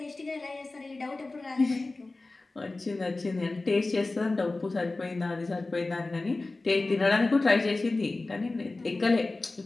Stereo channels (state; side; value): quieter; right; 3.2 dB